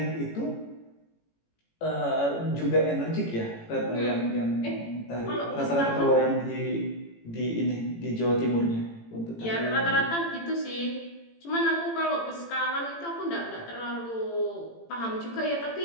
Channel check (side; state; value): right; late; 18 ms